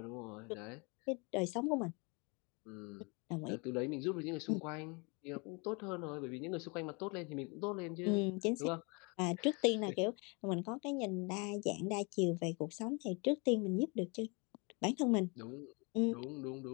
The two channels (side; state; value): right; quieter; 30.7 dB